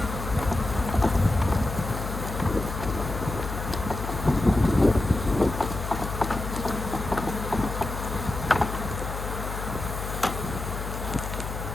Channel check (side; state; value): left; noise; hum, 6 dB below the sound